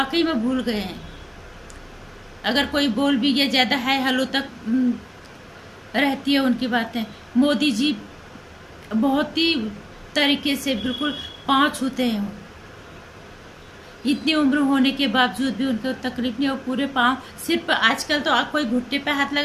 में भूल गए हैं। अगर कोई बोल भी गया, ज़्यादा है हेलो तक रहती है उनकी बातें। मोदी जी बहुत ही तरीके से बिल्कुल पाँव छूते हैं। इतनी उम्र होने के बावजूद भी उनको तकलीफ नहीं, और पूरे पाँव, सिर्फ आजकल तो कोई घुटने पे हाथ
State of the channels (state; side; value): identical; both; correlation 1.00